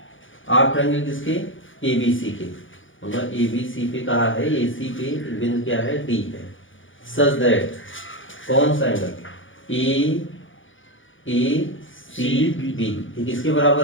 आर्क ट्रायंगल किसके, एबीसी के, मतलब एबीसी पे कहा है, एसी पे बिंदु क्या है, डी है। सच दैट कौन सा एंगल, ए सी बी, ये किसके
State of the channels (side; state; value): right; late; 0.57 ms